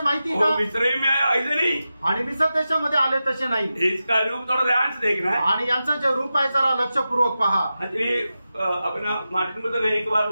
माहिती का. मिस्र में आया ऐसे नहीं. आणि मिसर देशामध्ये आले तसे नाही. इसका रूप थोड़ा ध्यान से देखना है. आणि यांचं जे रूप आहे जरा लक्षपूर्वक पहा. एक्चुअली अपना मार्टिन लूथर ने एक बार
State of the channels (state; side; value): inverted; both; correlation -0.92